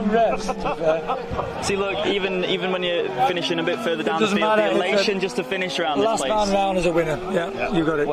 rest. See, look, even when you're finishing a bit further down the field, the elation just to finish around this place. Last man round is a winner. Yeah, you got it.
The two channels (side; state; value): both; identical; correlation 1.00